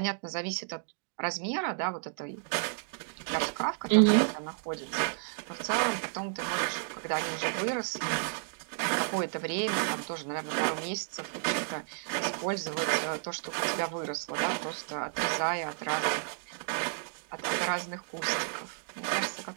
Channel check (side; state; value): left; silent; 56 dB below the other